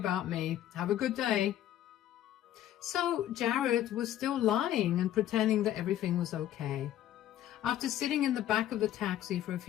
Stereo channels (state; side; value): quieter; right; 12.2 dB